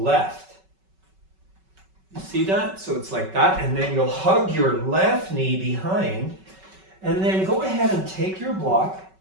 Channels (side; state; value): left; late; 5.3 ms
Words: You see that? So it's like that, and then you'll hug your left knee behind, and then go ahead and take your block.